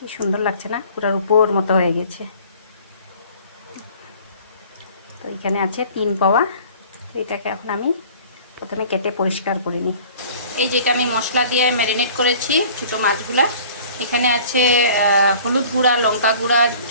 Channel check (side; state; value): both; inverted; correlation -0.49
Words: সুন্দর লাগছে না? পুরার উপর মতো হয়ে গেছে। তো এখানে আছে 3 পাওয়া। তো এটাকে এখন আমি প্রথমে কেটে পরিষ্কার করে নিই। এই যেটা আমি মশলা দিয়ে ম্যারিনেট করেছি ছোটো মাছগুলা, এখানে আছে হলুদ গুঁড়া, লঙ্কা গুঁড়া,